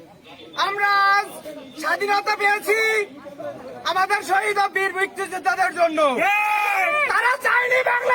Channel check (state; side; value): identical; both; correlation 1.00